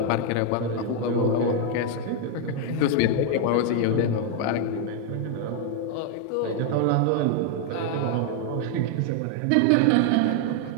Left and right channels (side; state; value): both; different; correlation 0.00